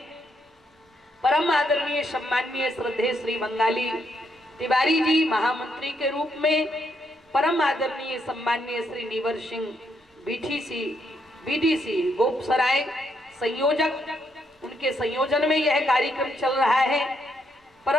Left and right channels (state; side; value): normal; both; correlation 0.76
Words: परम आदरणीय सम्माननीय श्रद्धेय श्री बंगाली तिवारी जी महामंत्री के रूप में परम आदरणीय सम्माननीय श्री नीवर सिंह बीडीसी गोपसराय संयोजक, उनके संयोजन में यह कार्यक्रम चल रहा है।